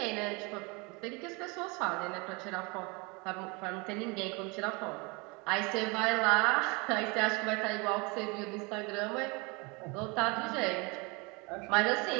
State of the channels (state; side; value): quieter; left; 28.4 dB